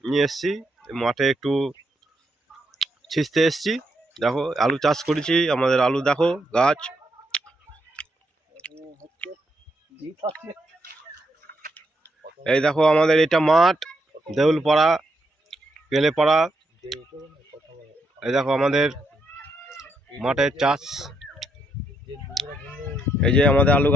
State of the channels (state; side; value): normal; both; correlation 0.79